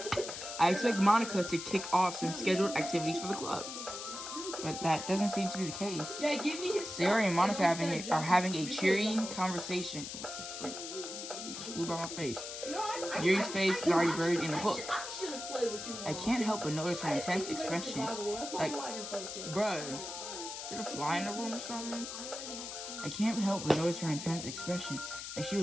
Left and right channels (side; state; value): left; noise; hiss, 8 dB below the sound